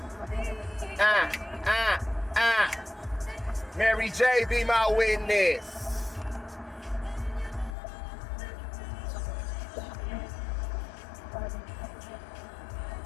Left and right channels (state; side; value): drops out; right; at 7.8 s